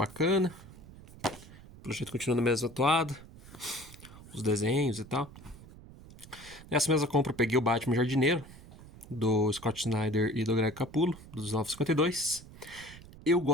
O projeto continua na mesma atuada. Os desenhos e tal. Nessa mesma compra eu peguei o Batman Jardineiro, do Scott Snyder e do Greg Capullo, dos 952. Eu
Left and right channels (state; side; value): noise; right; rumble, 18 dB below the sound